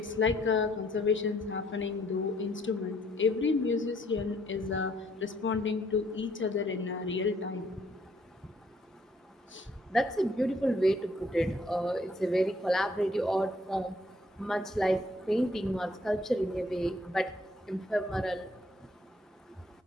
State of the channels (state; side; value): normal; both; correlation 0.66